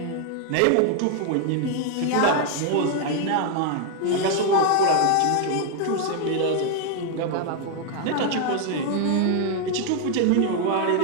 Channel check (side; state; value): both; different; correlation 0.01